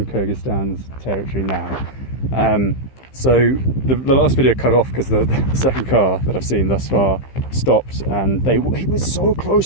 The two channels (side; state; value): right; late; 15 ms